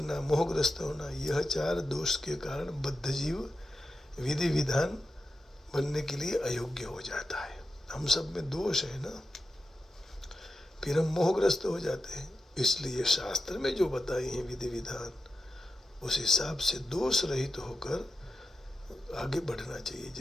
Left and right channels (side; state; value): both; normal; correlation 0.90